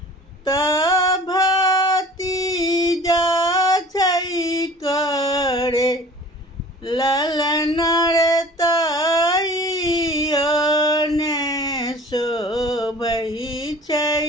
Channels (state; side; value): normal; both; correlation 0.46